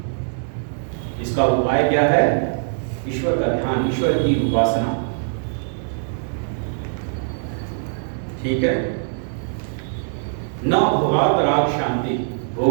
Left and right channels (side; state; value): left; silent; digital silence